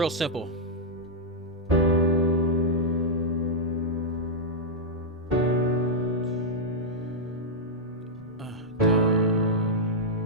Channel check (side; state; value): both; normal; correlation -0.05